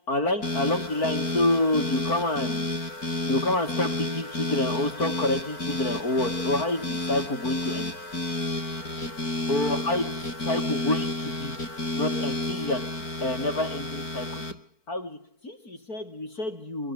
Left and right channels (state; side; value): late; right; 4.5 ms